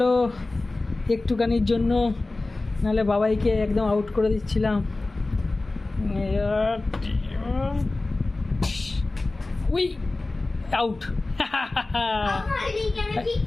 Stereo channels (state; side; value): quieter; right; 3.1 dB